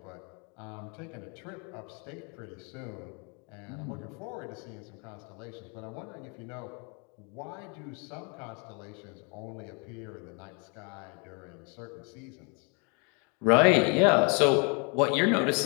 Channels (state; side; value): quieter; right; 34.4 dB